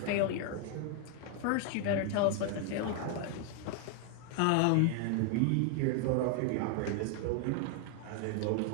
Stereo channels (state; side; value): different; both; correlation 0.00